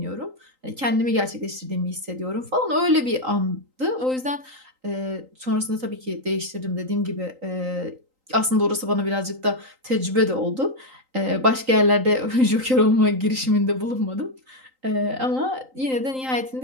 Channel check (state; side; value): late; left; 3.8 ms